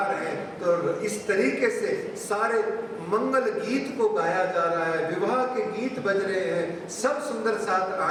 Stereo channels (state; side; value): identical; both; correlation 1.00